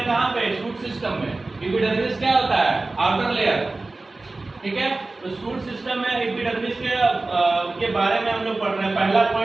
कहाँ पे, शूट सिस्टम में। एपिडर्मिस क्या होता है, आउटर लेयर, ठीक है। तो शूट सिस्टम में एपिडर्मिस के बारे में हम लोग पढ़ रहे हैं। पहला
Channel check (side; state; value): left; quieter; 3.2 dB